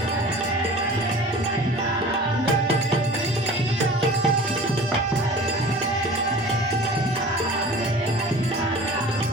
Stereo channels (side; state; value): both; normal; correlation 0.41